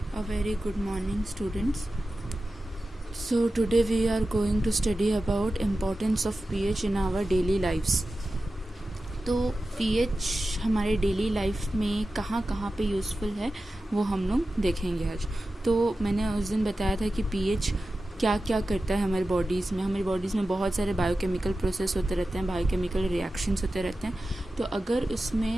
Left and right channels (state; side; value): normal; both; correlation 0.94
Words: A very good morning, students. So today we are going to study about importance of pH in our daily lives. तो pH हमारे डेली लाइफ में कहाँ कहाँ पे यूज़फुल है वो हम लोग देखेंगे आज. तो मैंने उस दिन बताया था कि pH क्या क्या करता है हमारी बॉडीज़ में बहुत सारे बायोकेमिकल प्रोसेस होते रहते हैं, बायोकेमिकल रिएक्शंस होते रहते हैं. तो अगर